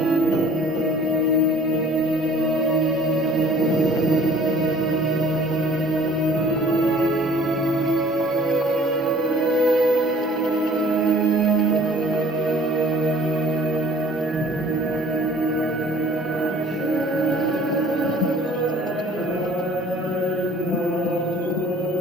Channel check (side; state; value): both; normal; correlation 0.53